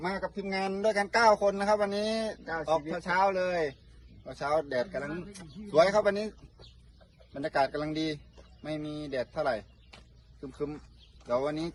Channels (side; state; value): both; identical; correlation 1.00